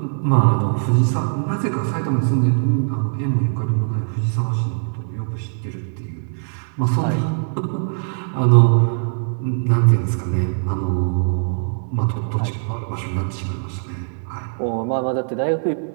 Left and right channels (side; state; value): left; silent; digital silence